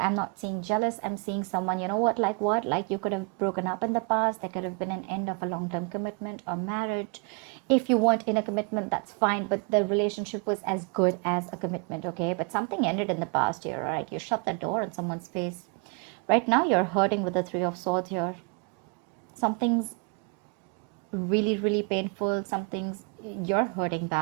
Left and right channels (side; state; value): left; quieter; 34.9 dB